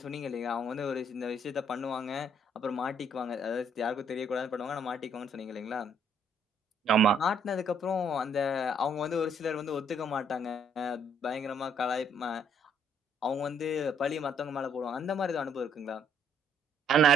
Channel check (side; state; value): both; normal; correlation 0.66